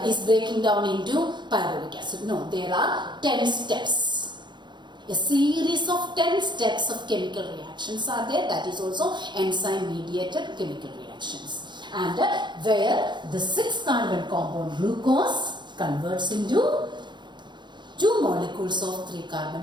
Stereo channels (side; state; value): left; late; 0.22 ms